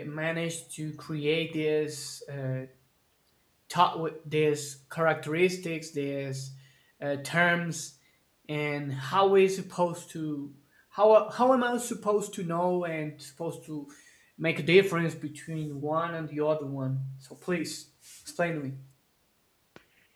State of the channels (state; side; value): identical; both; correlation 1.00